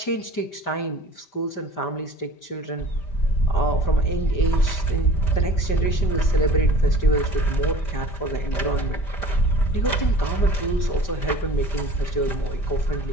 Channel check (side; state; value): right; late; 5.1 ms